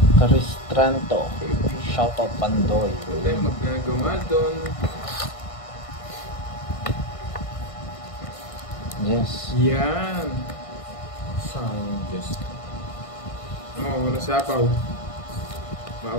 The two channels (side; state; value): right; late; 1.5 ms